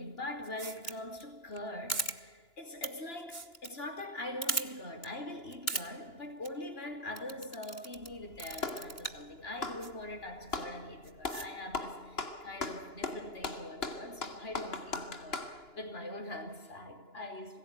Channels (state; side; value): late; right; 2.9 ms